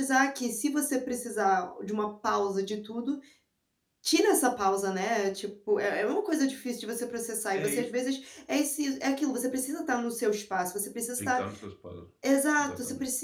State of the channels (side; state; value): both; identical; correlation 1.00